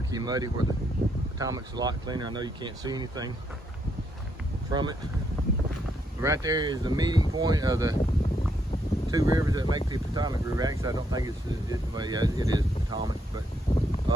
muddy, where the Potomac's a lot cleaner. I know you can't see anything from it. Right there is the meeting point of the two rivers that make the Potomac River. Actually, I don't think it is Potomac, but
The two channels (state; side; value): normal; both; correlation 0.75